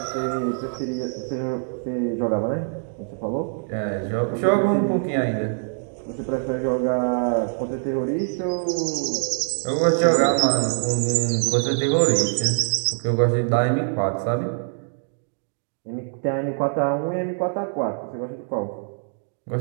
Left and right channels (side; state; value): left; silent; 63 dB below the other